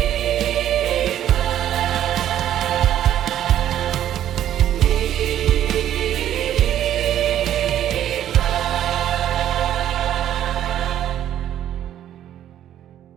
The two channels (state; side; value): quieter; left; 11.3 dB